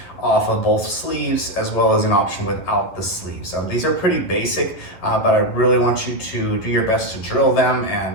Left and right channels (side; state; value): right; late; 11 ms